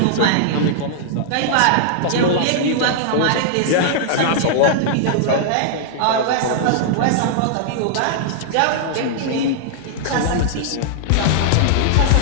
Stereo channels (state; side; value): different; both; correlation -0.01